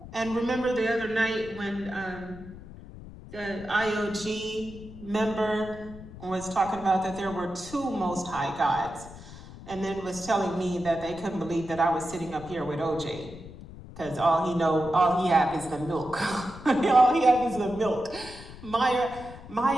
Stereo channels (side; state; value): left; noise; rumble, 15 dB below the sound